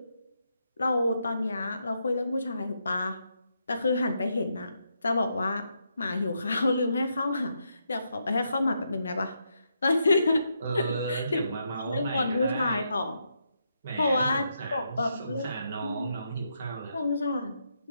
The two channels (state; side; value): inverted; both; correlation -0.80